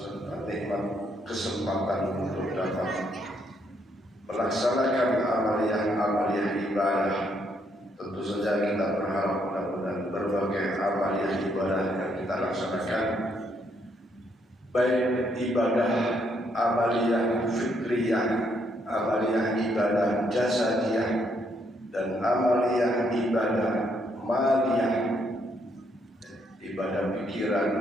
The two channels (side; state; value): both; normal; correlation 0.73